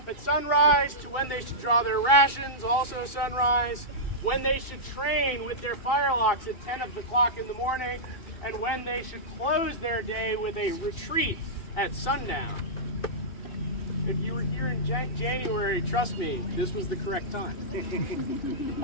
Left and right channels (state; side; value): late; right; 2.8 ms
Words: at sunrise to when they should draw their rations, also sunrise, when they should train with their firelocks at 10 o'clock in the morning, and when they should close their day with a retreat at sundown. If you were here in January, trust me, this was the correct time.